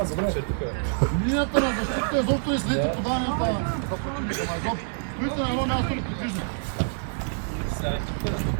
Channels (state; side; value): silent; left; digital silence